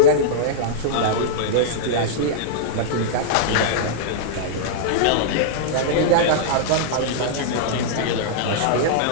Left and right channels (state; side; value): different; both; correlation -0.02